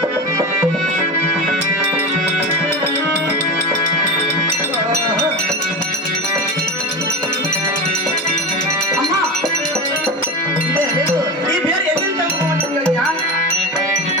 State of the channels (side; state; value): both; normal; correlation 0.25